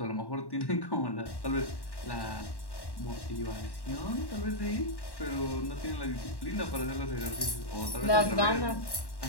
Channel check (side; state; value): right; late; 1.1 ms